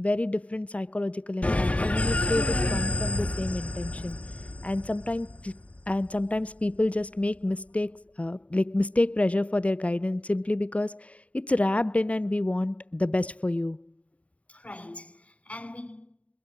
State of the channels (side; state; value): right; late; 0.066 ms